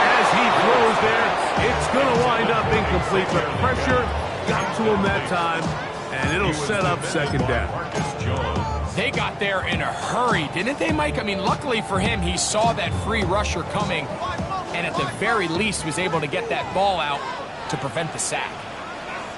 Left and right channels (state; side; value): identical; both; correlation 1.00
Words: as he throws there. It's going to wind up incomplete. The pressure got to him that time, and it'll set up second down. They got there in a hurry, didn't they, Mike? I mean, luckily for him, he saw that free rusher coming, and at the very least was able to get that ball out to prevent the sack.